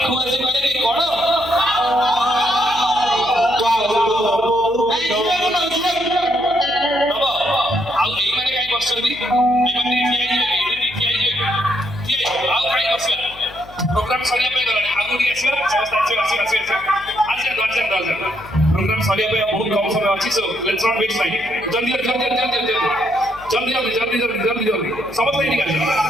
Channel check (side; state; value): left; noise; hum, 21 dB below the sound